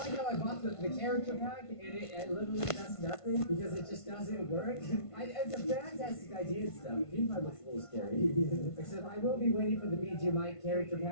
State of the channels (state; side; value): late; right; 1.5 ms